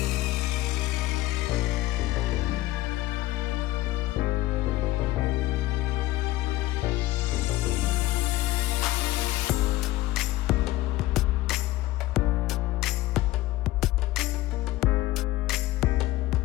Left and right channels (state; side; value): quieter; right; 16.8 dB